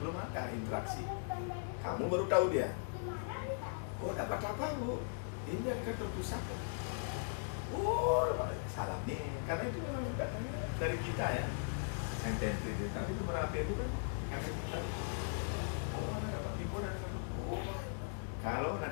ada interaksi. Kamu baru tahu dia. Oh, dapat apa Bu? Ini dari kantor pusat. Oh, salahnya, karena itu memang datangnya dari kita ya, yang template itu. Tapi nomor HP bukan kami kita. Oh, Anda dapat info dari kantor. Oh, kalau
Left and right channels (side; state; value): right; silent; digital silence